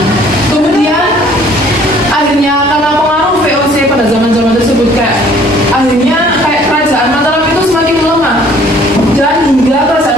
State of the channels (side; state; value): both; normal; correlation 0.56